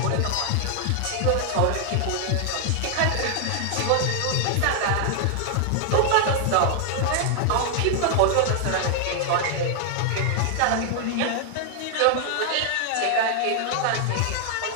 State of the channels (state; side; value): different; both; correlation 0.00